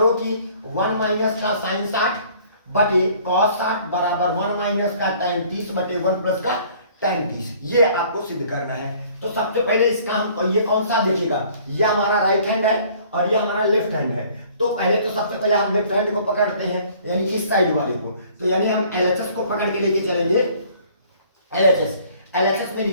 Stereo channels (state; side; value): inverted; both; correlation -0.55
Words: कि 1 माइनस का साइन 60 बटे cos 60 बराबर 1 माइनस का tan 30 बटे 1 प्लस का tan 30। ये आपको सिद्ध करना है। तो सबसे पहले इसका हम ये कौन सा देखिएगा, ये हमारा राइट हैंड है और ये हमारा लेफ्ट हैंड है। तो पहले तो सबसे पहले हम लेफ्ट हैंड को पकड़ते हैं यानी इस साइड वाले को। तो यानी हम LHS को पकड़ के लेके चलेंगे। LHS में